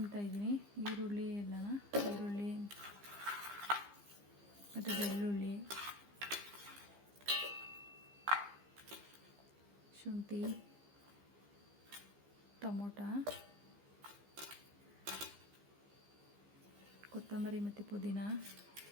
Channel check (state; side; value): late; left; 15 ms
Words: ಇದ್ದೀನಿ ಈರುಳ್ಳಿ ಮತ್ತು ಬೆಳ್ಳುಳ್ಳಿ, ಶುಂಠಿ, ಟೊಮೊಟ, ಕೊತ್ತಂಬರಿ ಮತ್ತು ಪುದೀನ